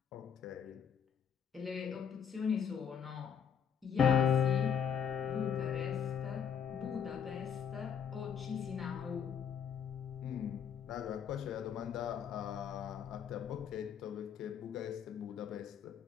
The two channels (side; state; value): right; quieter; 7.7 dB